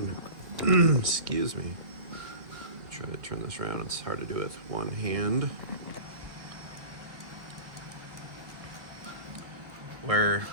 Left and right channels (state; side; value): late; left; 1.6 ms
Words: excuse me, try to turn this around. It's hard to do with one hand. Where